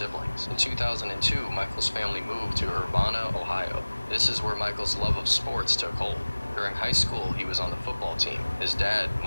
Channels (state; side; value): inverted; both; correlation -1.00